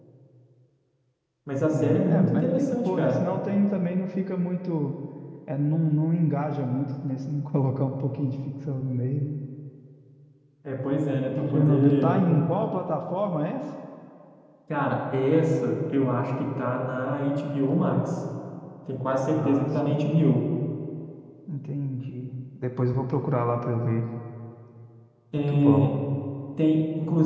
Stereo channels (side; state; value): both; identical; correlation 1.00